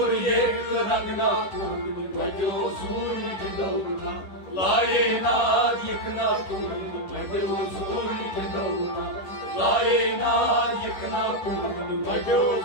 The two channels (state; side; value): late; right; 10 ms